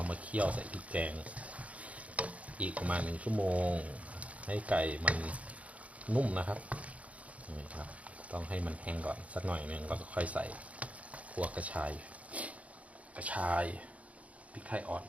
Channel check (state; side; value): late; left; 0.066 ms